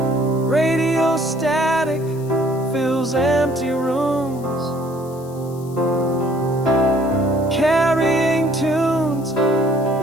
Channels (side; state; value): left; noise; hiss, 23 dB below the sound